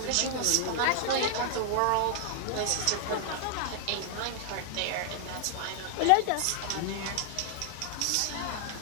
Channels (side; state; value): both; different; correlation 0.00